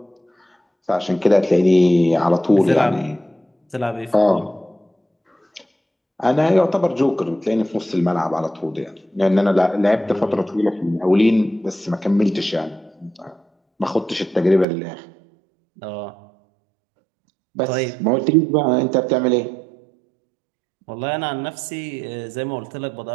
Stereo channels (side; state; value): left; drops out; at 14.7 s